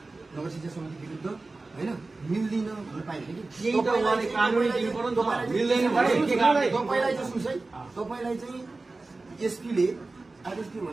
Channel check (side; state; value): left; quieter; 3.4 dB